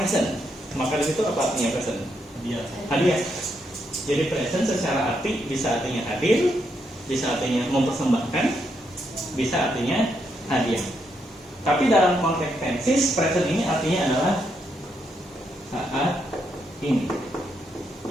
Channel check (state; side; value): normal; both; correlation 0.79